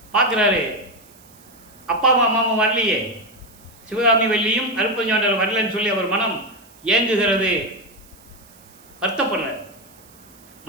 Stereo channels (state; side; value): noise; right; hiss, 26 dB below the sound